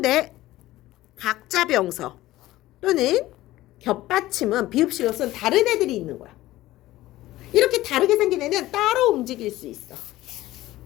각자 병서 또는 겹받침은 비읍식을 쓴 다른 애들이 있는 거야. 이렇게 다르게 생긴 애는 따로 움직일 수 있어.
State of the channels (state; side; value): quieter; right; 16.4 dB